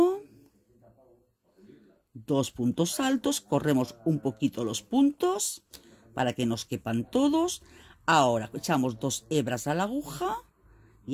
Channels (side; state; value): both; identical; correlation 1.00